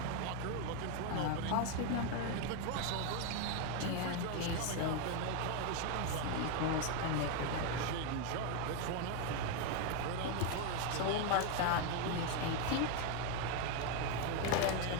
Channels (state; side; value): different; both; correlation 0.01